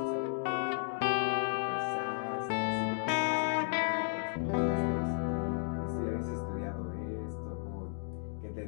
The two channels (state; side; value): silent; right; digital silence